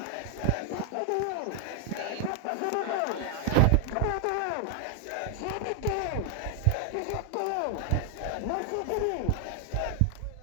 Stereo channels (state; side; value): different; both; correlation 0.00